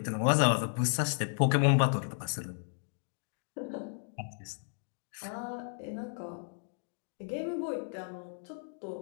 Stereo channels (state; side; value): silent; right; digital silence